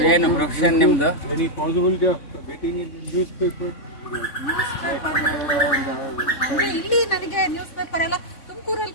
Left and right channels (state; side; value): late; right; 3.6 ms